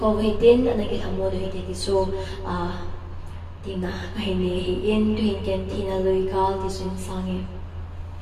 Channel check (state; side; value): identical; both; correlation 1.00